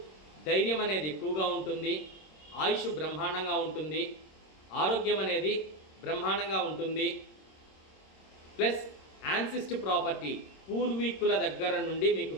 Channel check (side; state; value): right; late; 26 ms